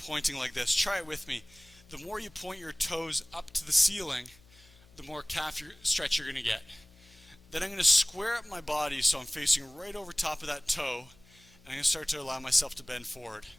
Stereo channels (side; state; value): left; noise; hum, 26 dB below the sound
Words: like this. Try it with me. The more you point your toes up to the ceiling, the more calf stretch you're going to get. Then I'm going to square up my body so I'm facing right over top of that toe, and I'm going to start to allow myself to bend forward.